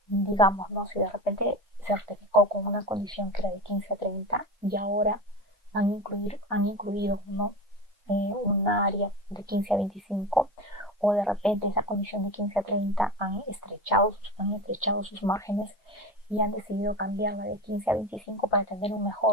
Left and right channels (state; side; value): normal; both; correlation 0.27